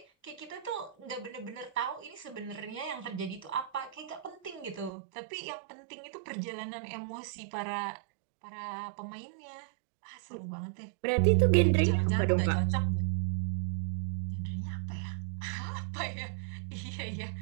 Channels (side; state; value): left; drops out; at 4.9 s